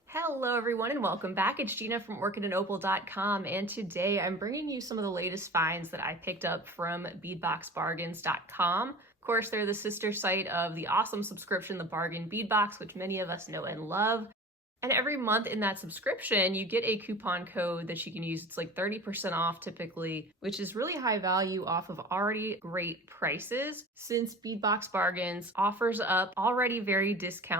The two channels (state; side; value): normal; both; correlation 0.38